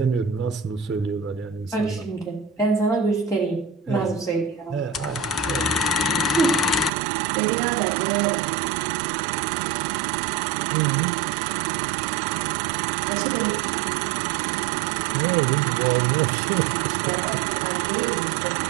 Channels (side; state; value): left; drops out; at 6.9 s